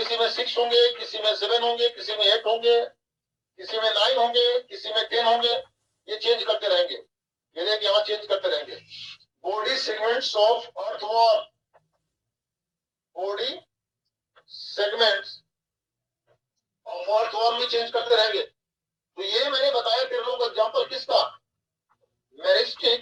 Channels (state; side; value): identical; both; correlation 1.00